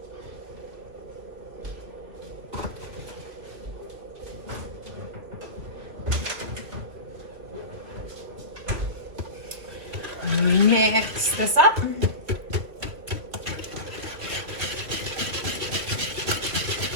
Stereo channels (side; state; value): left; late; 3.0 ms